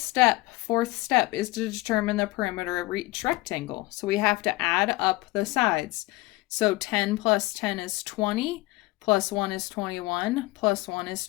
fourth step, is to determine the perimeter of each rectangle. So we have to add up the sides. So 10 plus 10 is 20, plus 1 is 21, plus 1 is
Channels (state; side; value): quieter; right; 20.8 dB